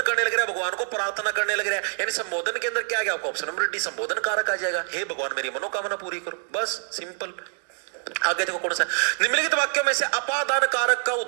करने लग रहा है, भगवान को प्रार्थना करने लग रहा है, यानी संबोधन के अंदर क्या आ गया आपको? ऑप्शन नंबर डी, संबोधन कारक आ जाएगा। हे भगवान मेरी मनोकामना पूरी करो, बस सिंपल। आगे देखो कौन सा? निम्नलिखित वाक्यों में से अपादान कारक का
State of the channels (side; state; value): left; silent; 56 dB below the other